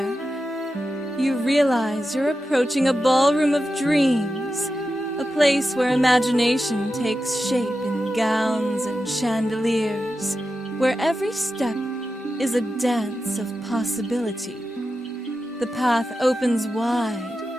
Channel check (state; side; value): normal; both; correlation 0.91